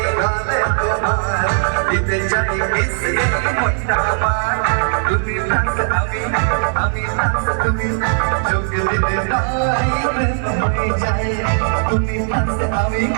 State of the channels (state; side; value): silent; left; 63 dB below the other